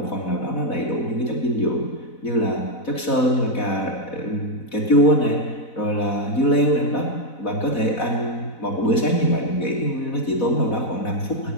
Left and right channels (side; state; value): right; late; 4.0 ms